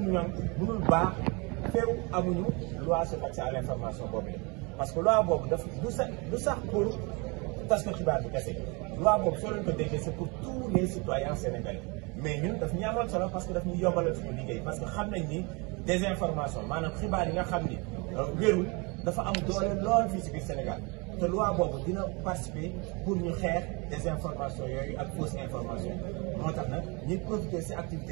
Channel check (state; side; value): quieter; left; 29.2 dB